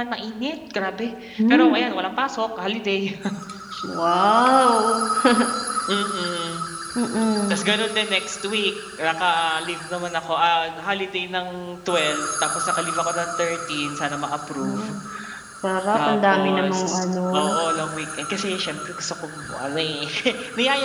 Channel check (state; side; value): identical; both; correlation 1.00